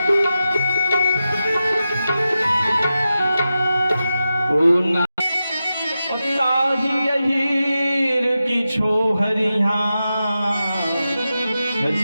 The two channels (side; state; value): both; inverted; correlation -0.91